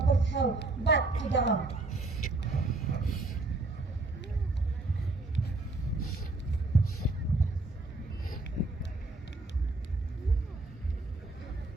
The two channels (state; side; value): quieter; left; 3.1 dB